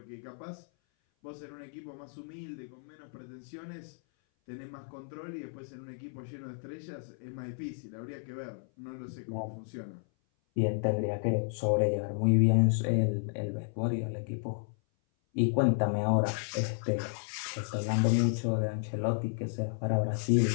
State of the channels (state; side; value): silent; right; 56 dB below the other